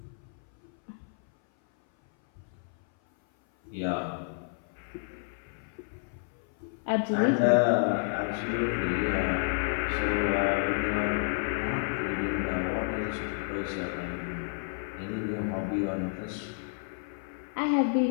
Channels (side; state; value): right; silent; 56 dB below the other